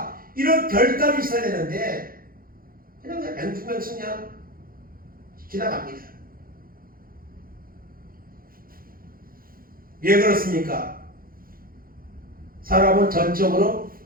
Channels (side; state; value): left; late; 0.42 ms